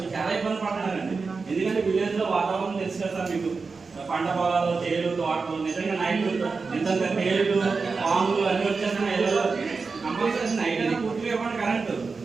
చాలా ఇబ్బంది పడుతున్నారండి. ఎందుకంటే విలేజ్ లో వాతావరణం తెలుసు కదా సార్ మీకు. పంట పొలాలు, తేలు, తోటలు నిజంగా నైట్ నిజంగా తేలు, పాములు అన్ని వచ్చేస్తున్నాయి. కంపల్సరీ నైట్ అయినా పూర్తిగా ఇవ్వండి కరెంటు.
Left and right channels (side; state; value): left; quieter; 4.5 dB